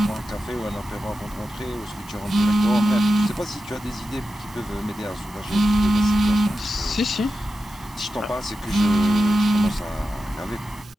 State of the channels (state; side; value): normal; both; correlation 0.91